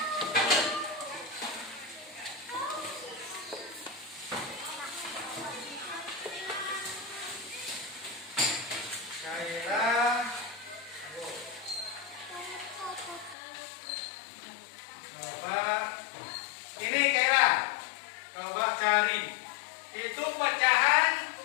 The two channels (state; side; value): drops out; right; at 13.4 s